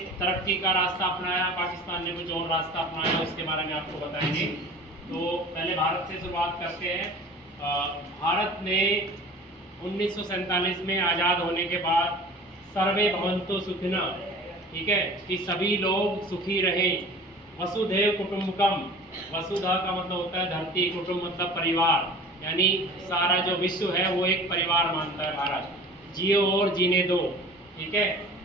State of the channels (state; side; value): normal; both; correlation 0.42